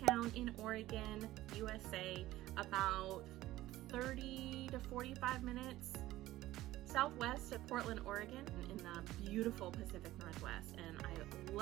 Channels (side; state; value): left; quieter; 16.0 dB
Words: in Oregon, USA, about 30 to 45 minutes southwest of Portland, Oregon, in the beautiful Pacific Northwest, and I